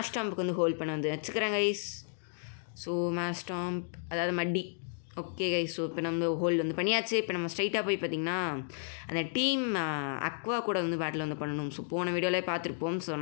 வந்து ஹோல்ட் பண்ண வந்து வச்சுக்கிறேன் கைஸ். ஸோ மேஸ்டாம்ப் அதாவது மட்டி. Okay guys. ஸோ இப்போ நம்ம ஹோல்டு வந்து பண்ணியாச்சு. இப்போ நம்ம ஸ்ட்ரைட்டாக போய் பார்த்திங்கன்னா அந்த டீம் அக்வா கூட வந்து பேட்டில் வந்து பண்ணணும். ஸோ போன வீடியோவிலே பார்த்துருப்போம். ஸோ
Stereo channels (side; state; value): right; silent; digital silence